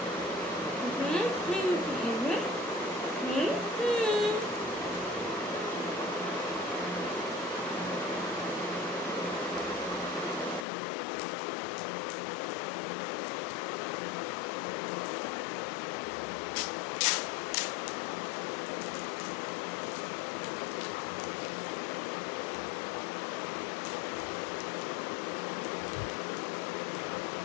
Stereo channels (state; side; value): drops out; right; at 10.7 s